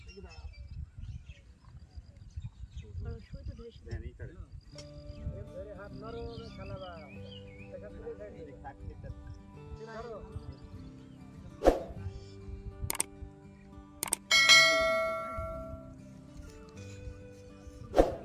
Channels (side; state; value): both; identical; correlation 1.00